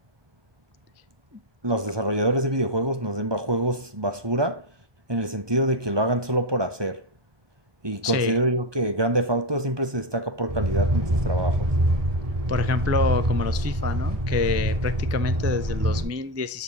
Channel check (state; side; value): late; left; 1.2 ms